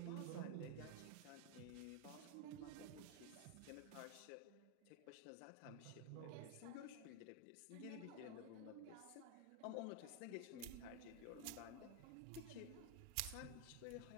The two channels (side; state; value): both; different; correlation 0.01